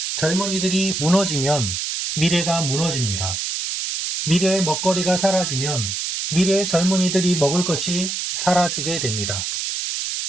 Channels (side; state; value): right; noise; hiss, 3 dB below the sound